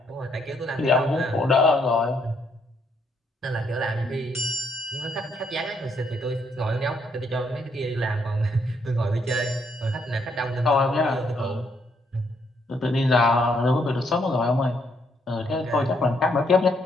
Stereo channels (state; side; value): normal; both; correlation 0.72